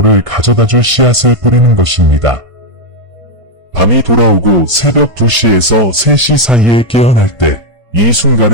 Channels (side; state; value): left; late; 1.5 ms